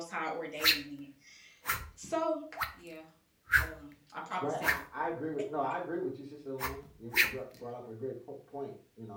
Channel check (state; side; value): identical; both; correlation 1.00